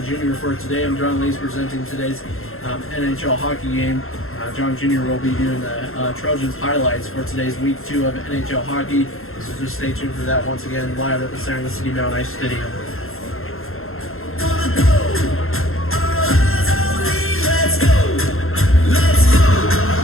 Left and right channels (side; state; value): right; late; 0.61 ms